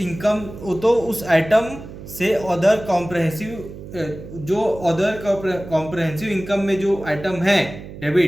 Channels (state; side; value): noise; right; hum, 13 dB below the sound